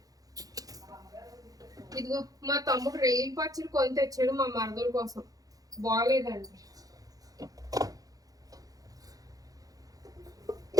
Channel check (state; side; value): late; left; 0.17 ms